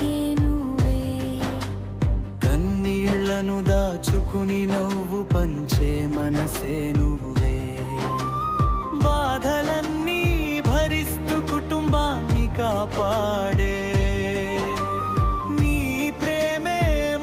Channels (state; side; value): identical; both; correlation 1.00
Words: నువ్వే. కన్నీళ్లను దాచుకుని నవ్వు పంచే మనసే నువ్వే. బాధలన్నీ భరిస్తూ కుటుంబాన్ని కాపాడే నీ ప్రేమే